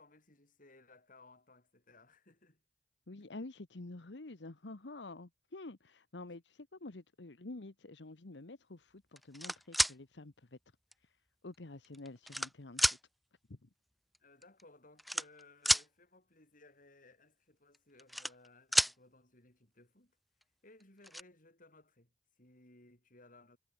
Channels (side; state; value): both; normal; correlation 0.96